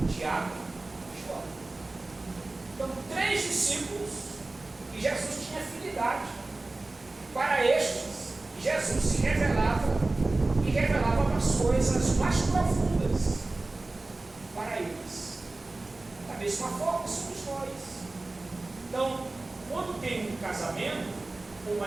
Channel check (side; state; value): left; quieter; 3.1 dB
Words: Tiago e João. Então, 3 discípulos que Jesus tinha afinidade. Para estes, Jesus se revelava e revelava as coisas mais profundas para eles. Da mesma forma, somos nós. Então, quando tem um casamento, um